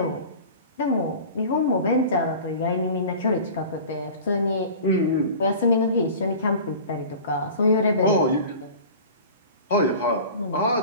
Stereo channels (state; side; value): inverted; both; correlation -0.39